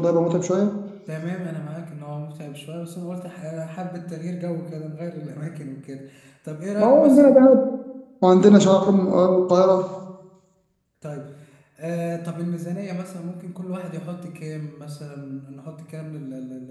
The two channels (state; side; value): identical; both; correlation 1.00